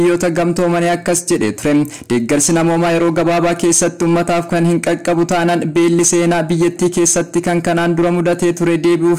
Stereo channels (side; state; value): both; identical; correlation 1.00